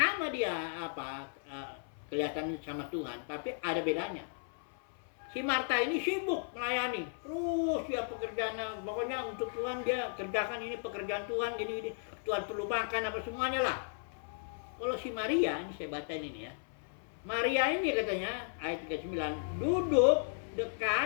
dia kelihatan sama Tuhan, tapi ada bedanya. Si Marta ini sibuk melayani, terus dia pekerjaan, pokoknya untuk Tuhan dia kerjakan ini pekerjaan Tuhan, ini Tuhan perlu makan apa semuanya lah. Kalau si Maria, ini saya baca ini ya. Maria ini katanya ayat 39 duduk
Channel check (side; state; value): right; silent; 54 dB below the other